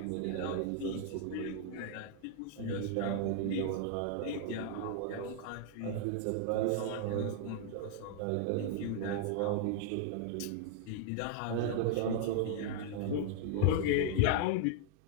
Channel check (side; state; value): both; different; correlation 0.00